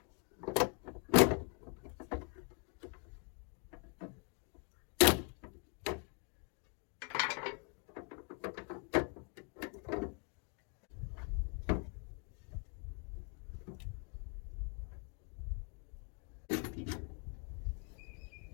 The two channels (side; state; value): right; quieter; 38.2 dB